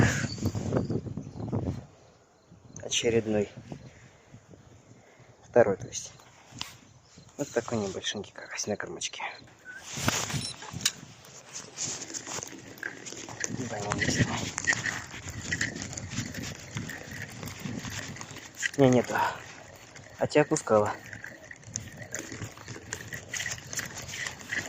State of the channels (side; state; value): both; identical; correlation 1.00